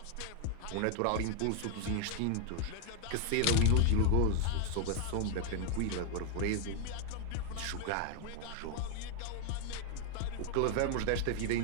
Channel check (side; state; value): both; different; correlation 0.01